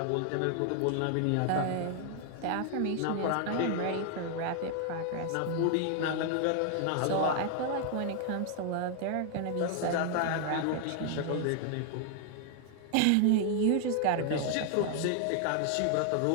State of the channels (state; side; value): different; both; correlation 0.00